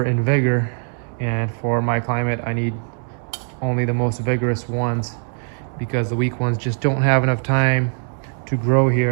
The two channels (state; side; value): silent; left; 58 dB below the other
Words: in vigor, and for my climate I need only the most vigorous ones, because the weak ones just don't have enough time to grow